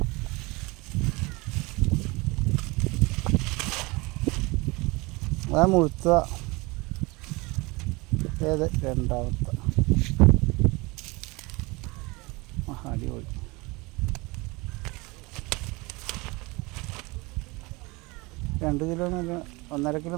അതാ മുഴുത്ത ഏത് രണ്ടാമത്തെ. അടിപൊളി. രണ്ട് കിലോ മേലെ, 1.5 കിലോ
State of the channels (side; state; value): left; quieter; 24.9 dB